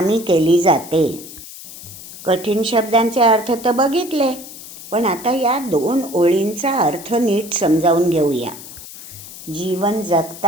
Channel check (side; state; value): left; noise; hiss, 15 dB below the sound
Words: केली जाते. कठीण शब्दांचे अर्थ तर बघितले, पण आता या 2 ओळींचा अर्थ नीट समजावून घेऊया. जीवन